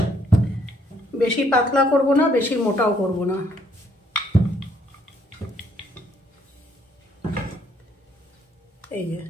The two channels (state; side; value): normal; both; correlation 0.67